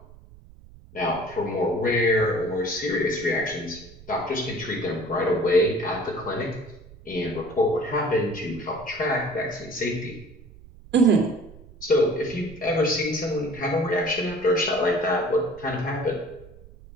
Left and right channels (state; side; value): noise; right; rumble, 21 dB below the sound